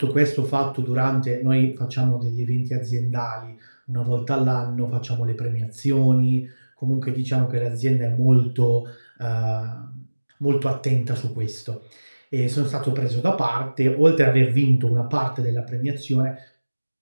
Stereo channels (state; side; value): inverted; both; correlation -1.00